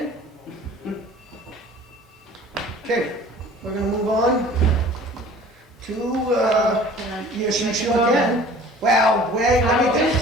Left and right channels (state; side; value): normal; both; correlation 0.47